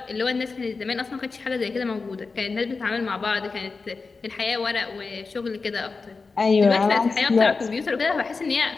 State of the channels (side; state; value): right; quieter; 4.3 dB